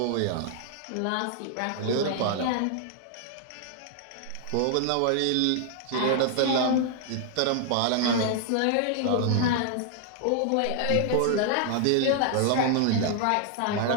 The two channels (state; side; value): different; both; correlation 0.00